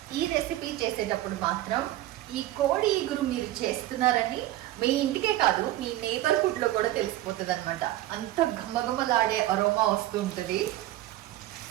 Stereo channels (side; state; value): left; quieter; 15.2 dB